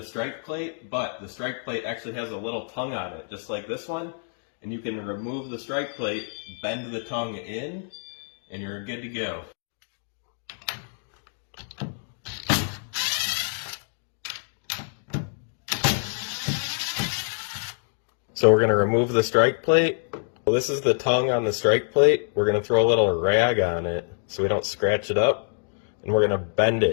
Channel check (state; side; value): silent; right; digital silence